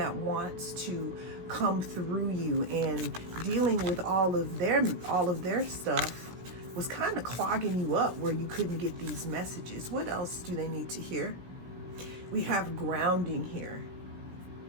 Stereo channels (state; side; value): late; left; 17 ms